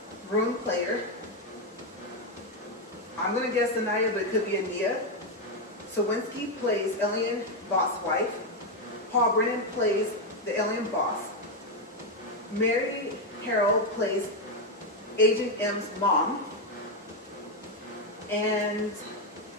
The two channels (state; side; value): normal; both; correlation 0.05